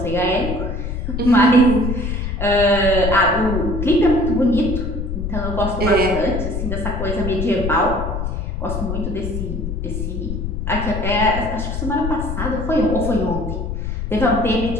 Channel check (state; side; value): noise; left; rumble, 3 dB below the sound